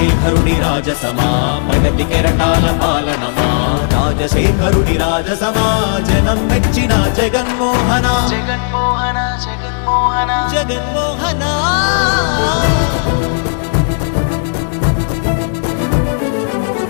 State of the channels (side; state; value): right; silent; digital silence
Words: రాజసమా ప్రగతి కెరటాల పాలనమా రాజశేఖరుడి రాజసమా జనం మెచ్చిన జగన్మోహన జగన్మోహన జగన్మోహన జగన్మోహన